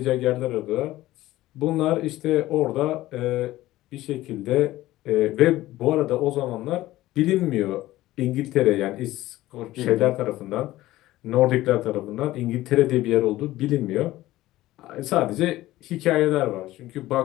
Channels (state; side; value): quieter; right; 16.3 dB